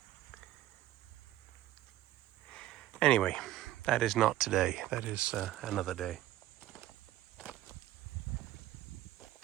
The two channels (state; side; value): quieter; left; 14.5 dB